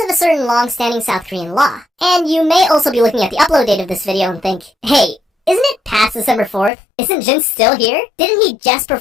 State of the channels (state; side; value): drops out; right; at 6.7 s